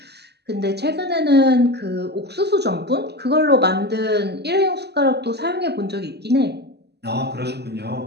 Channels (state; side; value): late; left; 0.48 ms